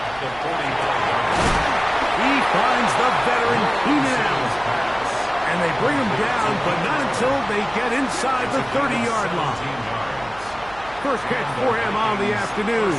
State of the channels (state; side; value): noise; right; hum, 20 dB below the sound